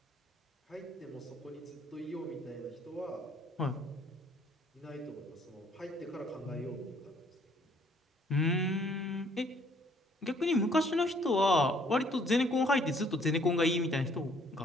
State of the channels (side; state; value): both; normal; correlation 0.62